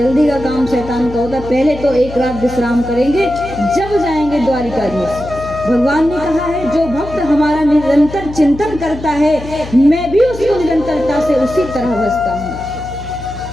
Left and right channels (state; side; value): noise; left; hum, 13 dB below the sound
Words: का काम शैतान का होता, पहले तो एक रात विश्राम करेंगे, जब जाएंगे द्वारिकाधीश। भगवान ने कहा है जो भक्त हमारा निरंतर चिंतन करता है, मैं भी उसको निरंतरता से उसी तरह बसता हूँ।